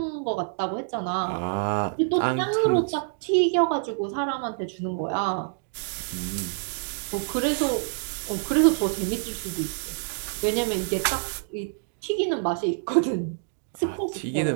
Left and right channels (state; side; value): silent; left; 60 dB below the other